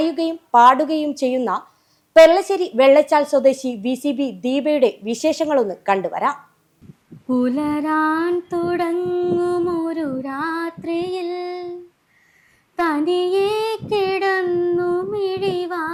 പാടുകയും ചെയ്യുന്ന പെർളശ്ശേരി വെള്ളച്ചാൽ സ്വദേശി VCB ദീപയുടെ വിശേഷങ്ങളൊന്ന് കണ്ടുവരാം. പുലരാൻ തുടങ്ങുമൊരു രാത്രിയിൽ തനിയെ കിടന്നു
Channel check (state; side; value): identical; both; correlation 1.00